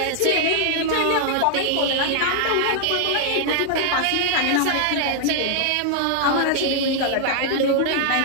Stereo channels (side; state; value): both; different; correlation 0.00